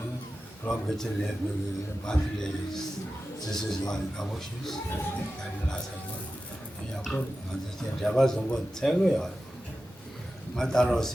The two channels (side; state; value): both; normal; correlation 0.93